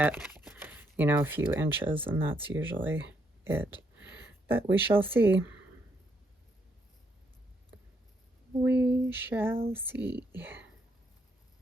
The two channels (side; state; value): both; normal; correlation 0.75